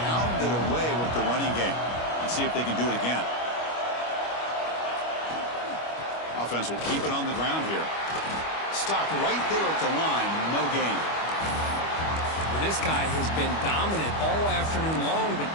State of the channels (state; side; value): late; right; 25 ms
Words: pounded away with the running game. Let's see if they can do it again. Offense will keep it on the ground here. Stopped right there at the line. No gain. Well, this guy has been dominant all afternoon long, but